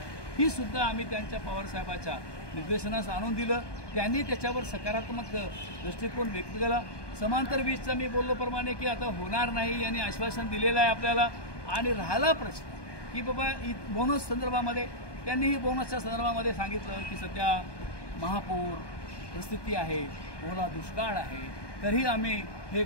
ही सुद्धा आम्ही त्यांच्या पवारसाहेबाच्या निर्देशनास आणून दिलं. त्यांनी त्याच्यावर सकारात्मक दृष्टिकोन व्यक्त केला. समांतर वीजचा मी बोललोप्रमाणे की आता होणार नाही यांनी आश्वासन दिलेलं आहे आपल्याला. आणि राहिला प्रश्न की बाबा बोनस संदर्भामध्ये त्यांनीही बोनसच्या संदर्भामध्ये सांगितलं की सध्या महापूर परिस्थिती आहे, ओला दुष्काळ आहे, तरीही आम्ही हे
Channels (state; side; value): late; right; 1.2 ms